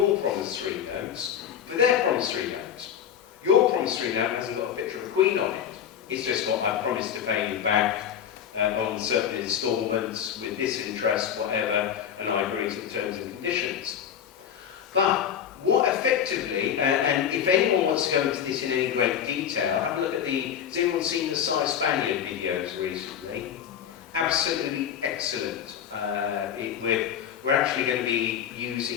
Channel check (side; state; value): right; quieter; 9.0 dB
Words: promissory notes for their promissory notes. Your promissory note hasn't got a picture of a queen on it. It's just got, I promise to pay you back on certain instalments with this interest, whatever, and I agree to the terms and conditions. But what effectively, and if anyone wants to go into this in any great detail, have a look at has anyone seen the Cy Spaniard videos recently? Absolutely excellent. We're actually going to be